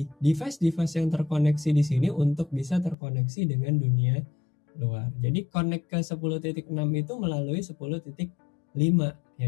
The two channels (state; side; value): drops out; right; at 3.0 s